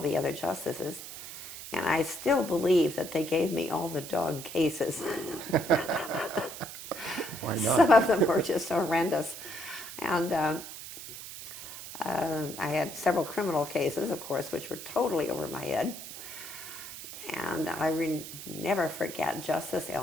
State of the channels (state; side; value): noise; right; hiss, 11 dB below the sound